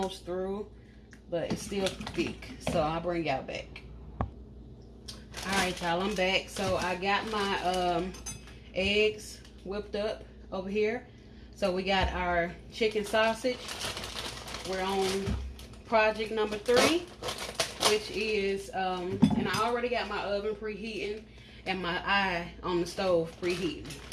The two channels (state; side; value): identical; both; correlation 1.00